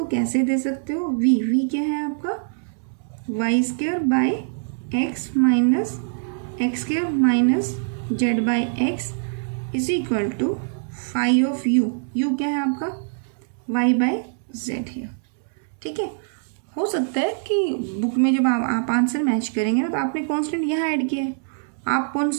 कैसे दे सकते हो, v क्या है आपका, y square by x minus x square minus z by x is equal to phi of u क्या है आपका, y बाई जेड है. ठीक है, हो सकता है कि बुक में जब आप आंसर मैच करेंगे ना, तो आपने कांस्टेंट यहाँ ऐड किया है, आप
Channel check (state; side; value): silent; left; 63 dB below the other